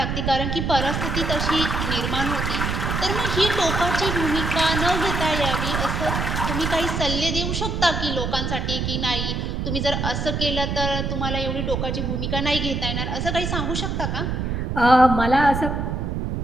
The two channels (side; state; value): right; noise; rumble, 1 dB below the sound